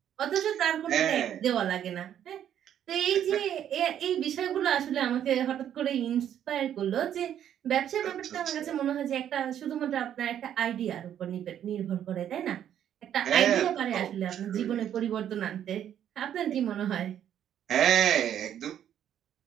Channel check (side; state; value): left; quieter; 10.1 dB